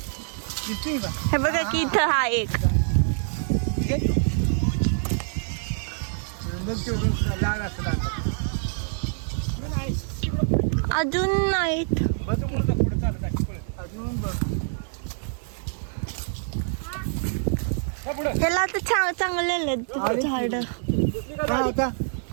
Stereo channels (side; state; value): left; silent; digital silence